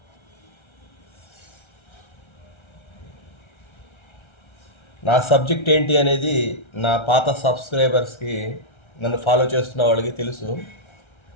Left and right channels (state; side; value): late; right; 1.3 ms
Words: నా సబ్జెక్ట్ ఏంటి అనేది నా పాత సబ్స్క్రైబర్స్కి, నన్ను ఫాలో చేస్తున్న వాళ్ళకి తెలుసు.